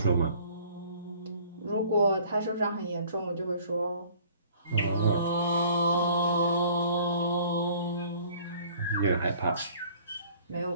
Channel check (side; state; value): both; inverted; correlation -0.53